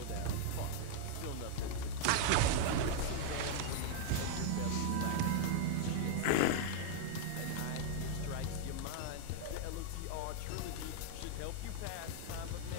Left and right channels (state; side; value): different; both; correlation -0.01